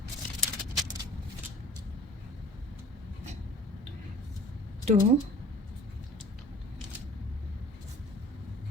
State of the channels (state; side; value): normal; both; correlation 0.46